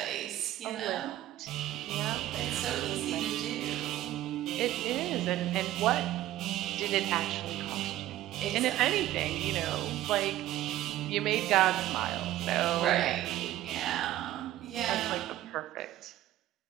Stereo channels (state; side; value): quieter; left; 14.2 dB